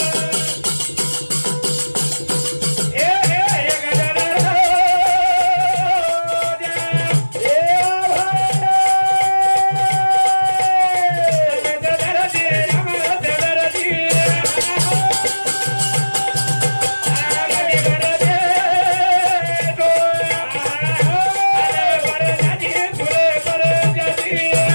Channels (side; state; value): both; inverted; correlation -1.00